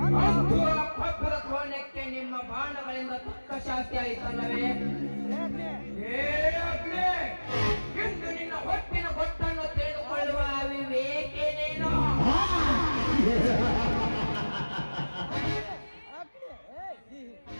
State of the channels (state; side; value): inverted; both; correlation -1.00